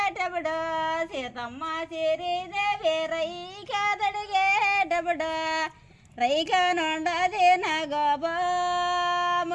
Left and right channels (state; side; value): identical; both; correlation 1.00